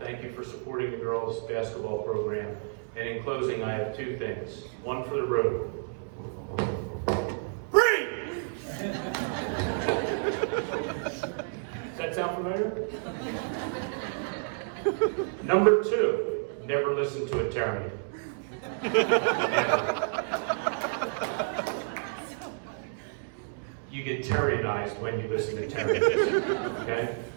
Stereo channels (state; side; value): silent; left; digital silence